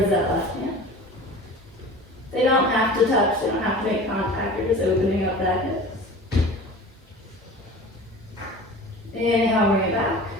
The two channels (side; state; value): both; normal; correlation 0.38